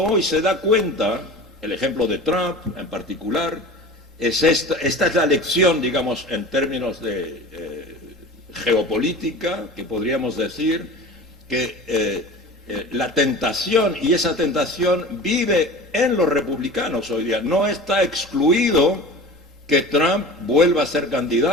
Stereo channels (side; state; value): both; normal; correlation 0.36